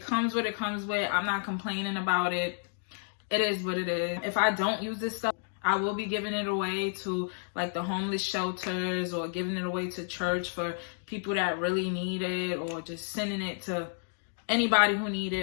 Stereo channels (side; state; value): right; silent; 57 dB below the other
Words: comes what it comes with. I'm not complaining about it. It is what it is. If I don't use this stuff, I will be giving it away to like the homeless shelters, or giving it away to church for people that really need it, or just sending it to anybody who need